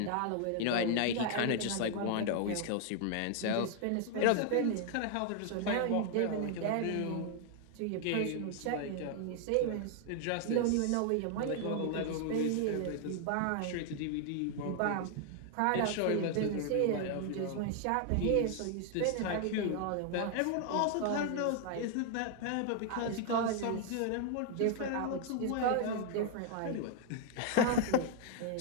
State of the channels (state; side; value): different; both; correlation 0.00